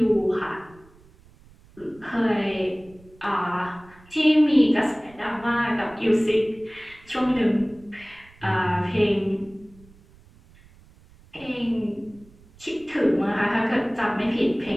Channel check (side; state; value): right; noise; rumble, 26 dB below the sound